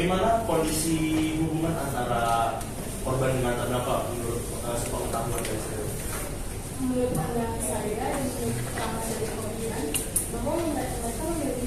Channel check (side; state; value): both; identical; correlation 1.00